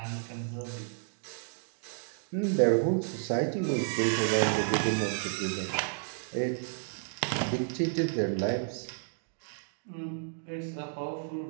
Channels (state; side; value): silent; left; digital silence